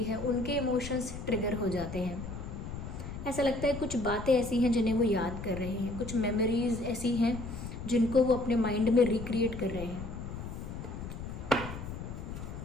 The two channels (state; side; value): noise; left; rumble, 8 dB below the sound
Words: है, उनके इमोशंस ट्रिगर हो जाते हैं। ऐसा लगता है कुछ बातें ऐसी हैं जिन्हें वो याद कर रहे हैं, कुछ मेमोरीज़ ऐसी हैं जिनको वो अपने माइंड में रिक्रिएट कर रहे हैं।